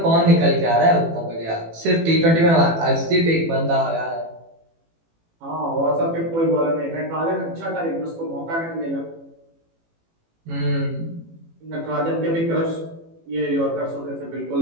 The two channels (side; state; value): left; late; 18 ms